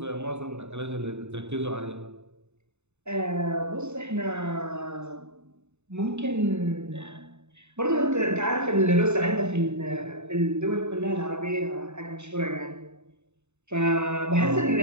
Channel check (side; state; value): left; late; 0.82 ms